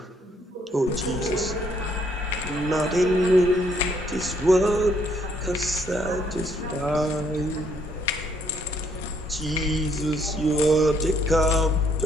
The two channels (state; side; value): normal; both; correlation 0.69